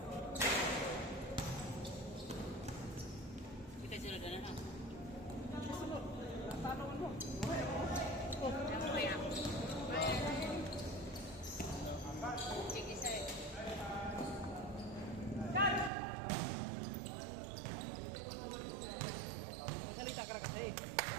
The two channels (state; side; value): drops out; left; at 15.9 s